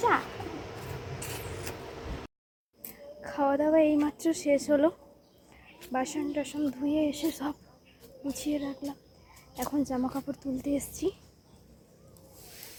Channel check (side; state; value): both; identical; correlation 1.00